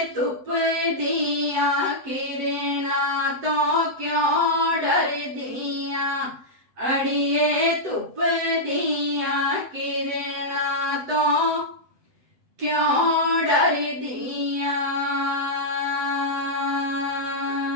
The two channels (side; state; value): left; late; 7.9 ms